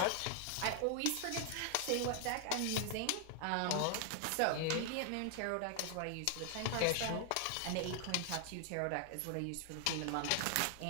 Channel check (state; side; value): different; both; correlation 0.00